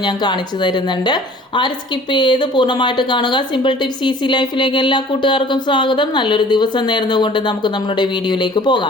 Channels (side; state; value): both; normal; correlation 0.49